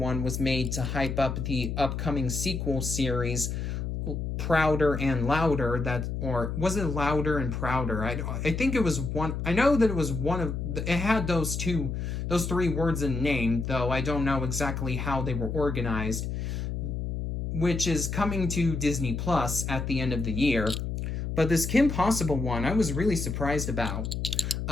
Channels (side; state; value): left; noise; hum, 3 dB below the sound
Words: was made to hype up the upcoming sequel series, Prouder and Louder, or was it Louder and Prouder? I think it was one. I know that it was one of. It had those 3 words in name, though I don't know exactly how they were organized, which is coming to Disney Plus at the end of the year. But this Kim Possible one, I was really surprised about.